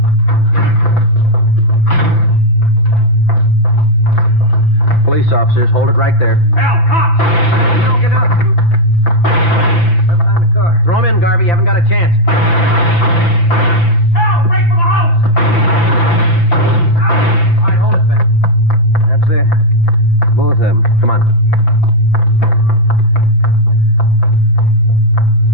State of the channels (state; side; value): late; right; 5.9 ms